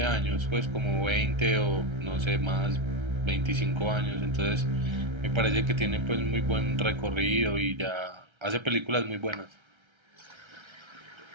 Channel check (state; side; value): late; left; 1.3 ms